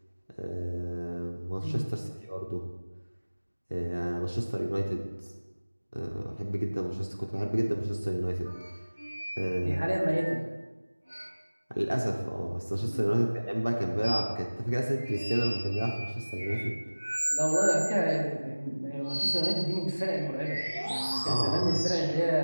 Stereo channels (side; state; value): both; inverted; correlation -1.00